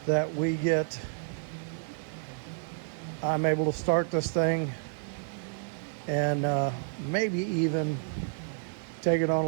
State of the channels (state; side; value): silent; left; digital silence